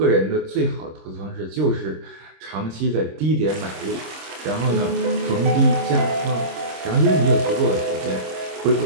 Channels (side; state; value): left; late; 26 ms